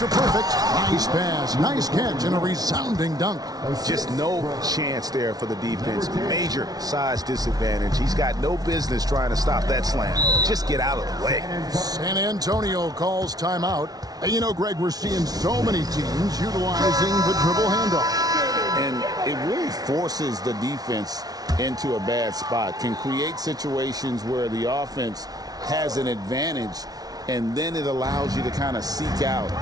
Perfect. Nice pass, nice catch, and a resounding dunk. Just no chance there for the defense. Major size disadvantage. He's got no business trying to stop that slam. Just get out of the way. San Antonio calls timeout. And you know, Greg, we're seeing so many teams utilizing the dribble handoff. And it really forces the defense into a bad spot. Can create situations where the offense has an advantage, and then it allows you to kind of seek out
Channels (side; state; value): left; late; 0.19 ms